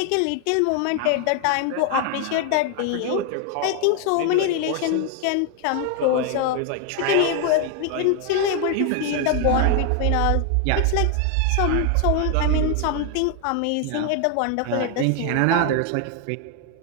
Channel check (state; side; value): different; both; correlation 0.01